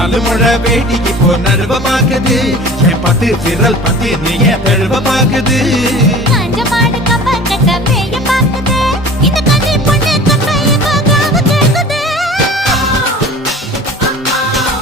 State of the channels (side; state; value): both; normal; correlation 0.42